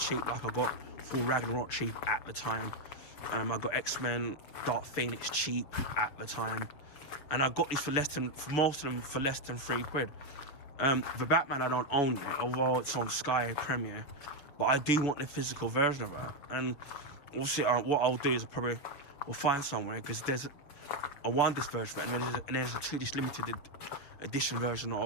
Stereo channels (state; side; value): late; right; 7.2 ms